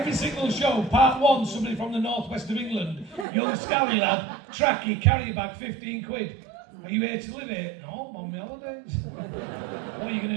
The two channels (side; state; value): left; drops out; at 3.2 s